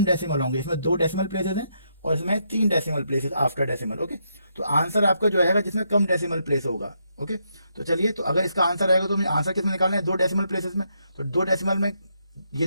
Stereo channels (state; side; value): inverted; both; correlation -0.78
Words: डेसिमल होंगे, इसमें 2 डेसिमल प्लेसेस हैं और इसमें 3 decimal places after decimal. Okay, तो आंसर आपका जो आएगा जिसमें कम डेसिमल प्लेस होगा। ओके, तो चलिए, तो अगर इसका आंसर आएगा तो मुझे आंसर किसमें निकालना है? 2 डेसिमल प्लेसेस में। तो 2 डेसिमल में